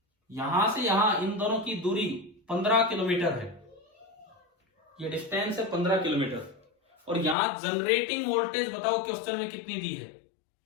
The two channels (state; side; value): drops out; right; at 7.4 s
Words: यहां से यहां इन दोनों की दूरी 15 किलोमीटर है, ये डिस्टेंस है 15 किलोमीटर। और यहां जनरेटिंग वोल्टेज बताओ क्वेश्चन में कितनी दी है,